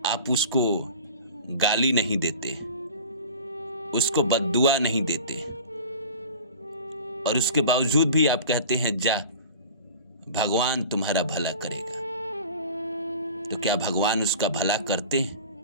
आप उसको गाली नहीं देते, उसको बद्दुआ नहीं देते, और उसके बावजूद भी आप कहते हैं जा भगवान तुम्हारा भला करेगा। तो क्या भगवान उसका भला करते हैं?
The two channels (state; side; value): inverted; both; correlation -0.39